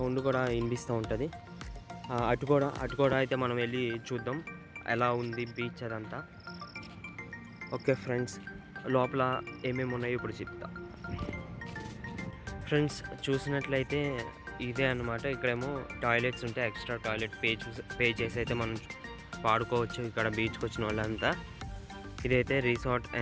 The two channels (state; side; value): identical; both; correlation 1.00